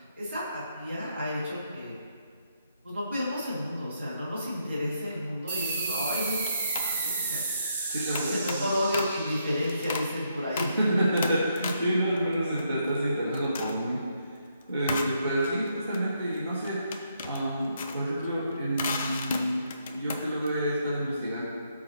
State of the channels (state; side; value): inverted; both; correlation -0.76